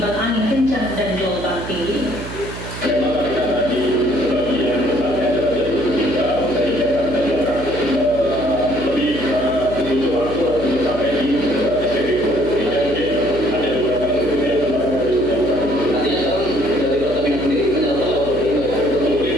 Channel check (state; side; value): noise; right; hum, 10 dB below the sound